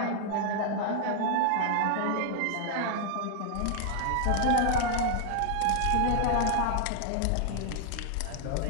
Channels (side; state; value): both; different; correlation 0.00